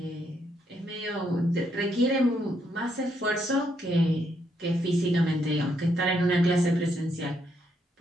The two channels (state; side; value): normal; both; correlation 0.76